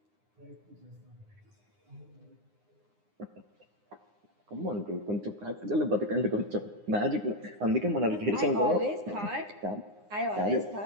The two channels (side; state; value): left; late; 9.7 ms